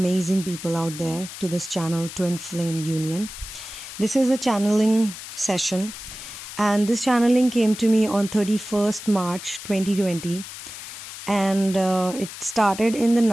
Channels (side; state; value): left; noise; hiss, 12 dB below the sound